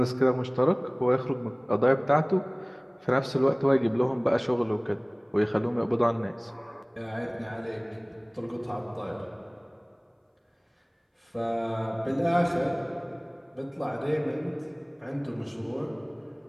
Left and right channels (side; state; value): both; identical; correlation 1.00